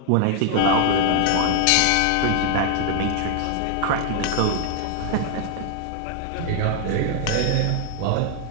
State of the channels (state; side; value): different; both; correlation 0.00